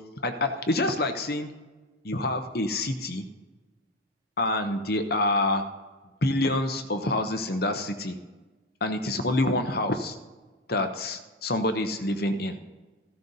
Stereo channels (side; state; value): both; normal; correlation 0.17